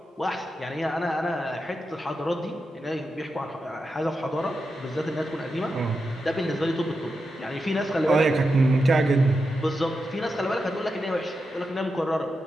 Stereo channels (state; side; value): normal; both; correlation 0.88